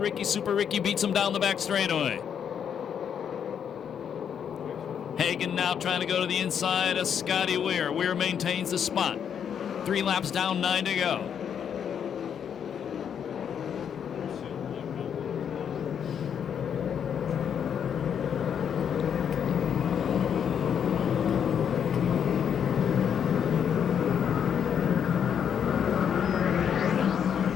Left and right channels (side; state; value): right; quieter; 8.1 dB